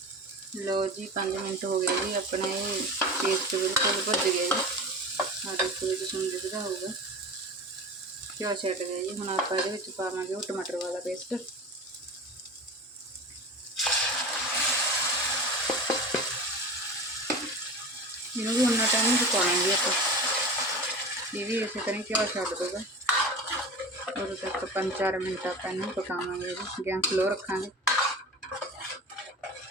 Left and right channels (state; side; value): normal; both; correlation 0.32